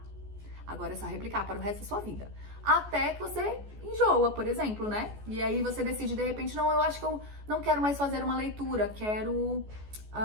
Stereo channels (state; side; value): late; left; 14 ms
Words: Agora é só replicar para o resto da sua vida. Até que você enjoa, por exemplo, né? E aí você decide, de repente, não, eu acho que eu não quero mais fazer uma leitura, quero